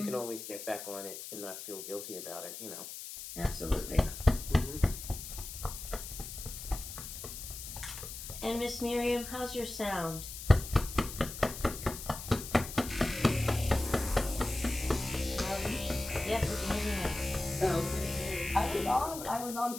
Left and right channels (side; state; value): left; noise; hiss, 9 dB below the sound